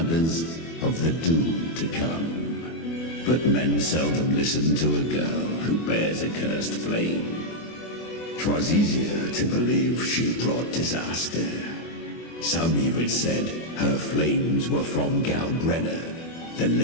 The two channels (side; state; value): right; late; 24 ms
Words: of the doom to come. But men seldom listen to a girl who bears a cursed flame. 'Twas easier to believe she brought disaster. Some even said her flames were from Galbrenna, the